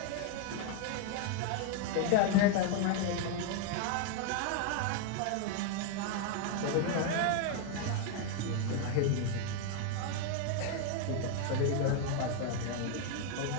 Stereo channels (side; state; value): both; different; correlation 0.01